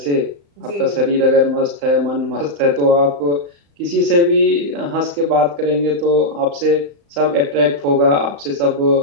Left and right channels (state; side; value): late; left; 35 ms